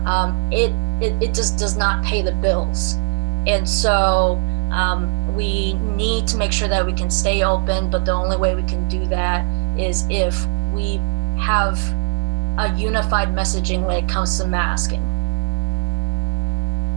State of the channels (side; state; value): left; silent; digital silence